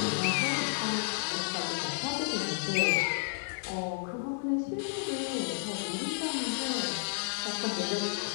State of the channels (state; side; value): silent; right; digital silence